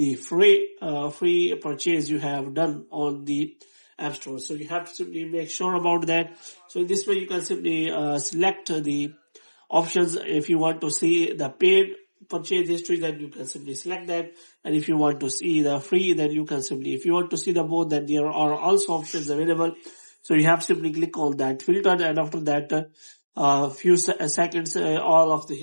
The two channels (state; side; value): inverted; both; correlation -1.00